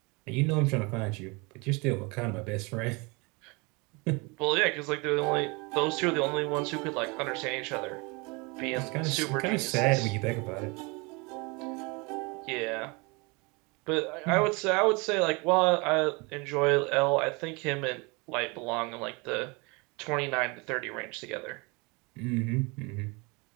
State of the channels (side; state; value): left; quieter; 28.2 dB